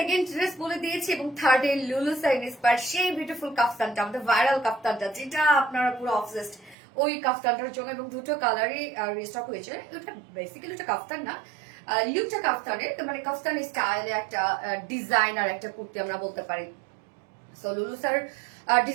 ড্রেস বলে দিয়েছি এবং থার্ড এ লুলু সাইনিস পার সেই বিউটিফুল কাফতানটা, আমাদের ভাইরাল কাফতানটা, যেটা আপনারা পুরো অবসেসড ওই কাফতানটার জন্য, এবং দুটো কালারই রিস্টক হয়েছে। ওটা বেসিক্যালি ওটা কাফতান না, লুকটা কাফতানের, মানে কাফতান স্টাইলে একটা ডিজাইনার একটা কুর্তি আমরা বলতে পারি। সো লুলু স্যার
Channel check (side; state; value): left; drops out; at 6.8 s